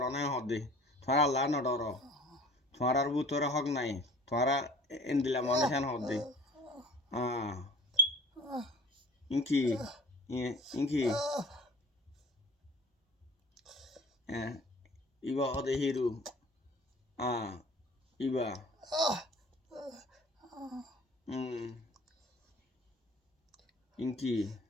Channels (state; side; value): normal; both; correlation 0.46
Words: নাই হদে তোমরা আল্লাহ ন ডর তোমরার বুতরে হক নাই তোমরা এন্দিলা মানুষ হেন হদে ইনকি ইনকি iba hode hiru iba inki